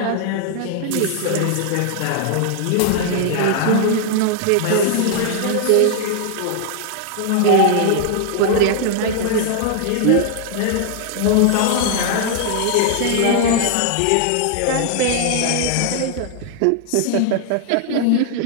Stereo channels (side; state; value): both; different; correlation 0.00